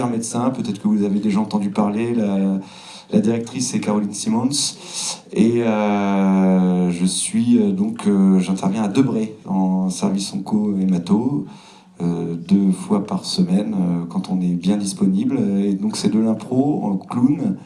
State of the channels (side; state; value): both; identical; correlation 1.00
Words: Médecin. Peut-être que vous avez déjà entendu parler. La directrice c'est Caroline Simons. Et j'interviens à Debré en service onco-hémato. 2 fois par semaine quand on est bien disponible. Et donc c'est de l'impro en clown